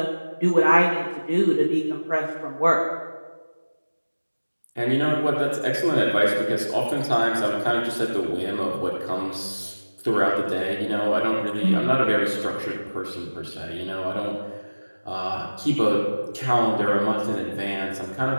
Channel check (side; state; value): both; inverted; correlation -1.00